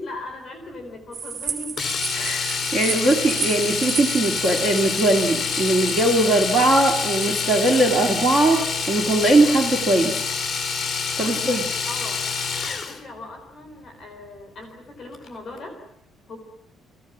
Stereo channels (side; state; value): both; normal; correlation 0.69